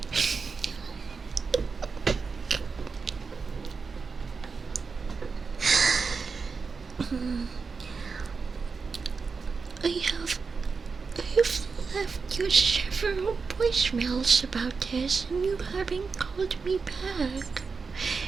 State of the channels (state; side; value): quieter; left; 4.9 dB